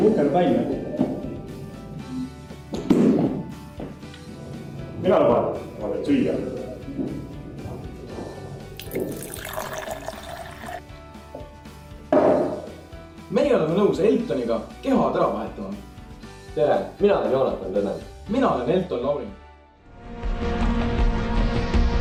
uhkel välja. Mina luban, ma teen süüa. Meie oleme nõus Eltoniga kehad ära vahetama. Tere, mina olen Joonatan Tõnen. Mina olen Elton Laurin.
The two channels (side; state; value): both; identical; correlation 1.00